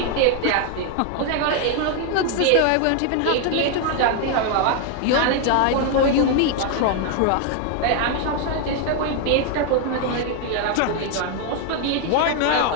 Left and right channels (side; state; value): both; different; correlation 0.01